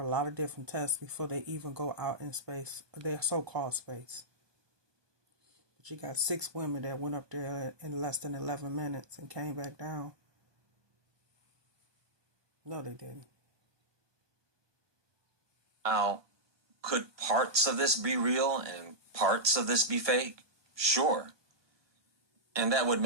lot of different tests before they even go out in space, their so-called space. But you got 6 women that went up there in less than 11 minutes and came back down. No, they didn't. Now, could parts of this be real and parts of this be fake? Sure. And that would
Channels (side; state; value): left; late; 1.2 ms